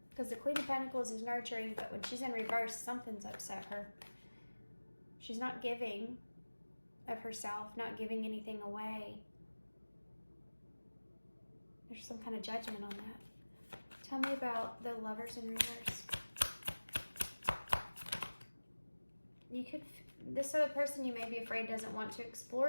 Because the Queen of Pentacles is nurturing, but when she's in reverse, something's upset her. She's not giving of herself, not giving anything away. There's some kind of judgment on that. Tell me about the Lovers in reverse. This other person you may be afraid doesn't want to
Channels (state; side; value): inverted; both; correlation -1.00